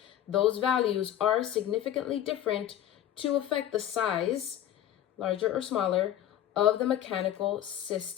those values are significantly different to affect the size, larger or smaller, of the mechanical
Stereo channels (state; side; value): quieter; right; 11.6 dB